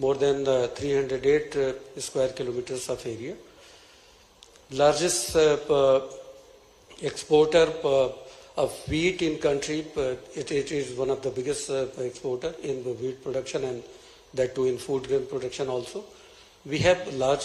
than 308 square kilometers of area. Largest exporter of wheat in country. It is one of the biggest exporter in the wheat production, and that too in food grain production also. We have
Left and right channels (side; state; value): both; identical; correlation 1.00